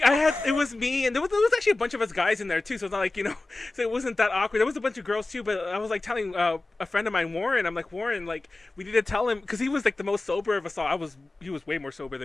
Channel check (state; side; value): quieter; right; 3.1 dB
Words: it was me, and there was actually a bunch of us guys in there too. So it's not like, so it wasn't that awkward. There was a bunch of girls too, but I was like telling a friend of mine, Warren. I'm like, Warren, like we need to tell him, because he was like the most sober of us all. He was way more sober